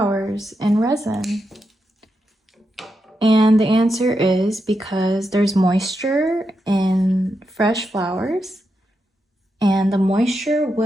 in resin? And the answer is because there's moisture in fresh flowers, and the moisture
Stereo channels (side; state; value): both; normal; correlation 0.85